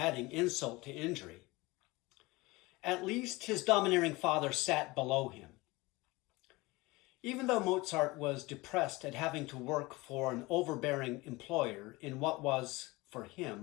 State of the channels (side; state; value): right; quieter; 22.0 dB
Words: insult to injury. At least his domineering father sat below him. Even though Mozart was depressed at having to work for an overbearing employer in what was, for